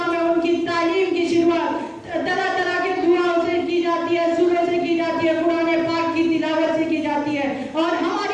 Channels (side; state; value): both; identical; correlation 1.00